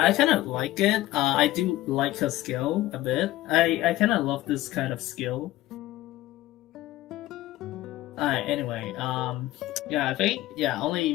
I kind of like it. I do like her skill a bit. I kind of love this kind of skill. Alright, anyway, yeah, I think,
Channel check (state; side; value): quieter; right; 16.0 dB